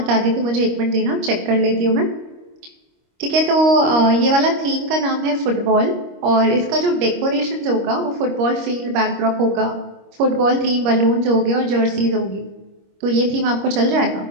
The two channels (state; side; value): late; left; 25 ms